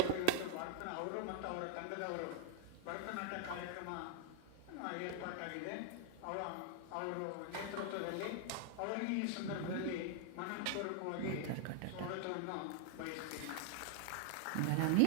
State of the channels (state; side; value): different; both; correlation 0.00